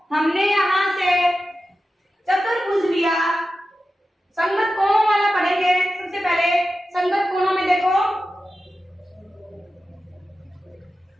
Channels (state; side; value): normal; both; correlation 0.92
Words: हमने यहाँ से चतुर्भुज लिया, संगत कोणों वाला पढ़ेंगे। सबसे पहले संगत कोणों में देखो,